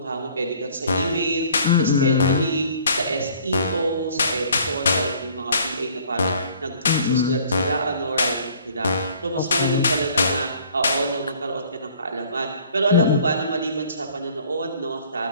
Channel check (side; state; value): both; inverted; correlation -0.56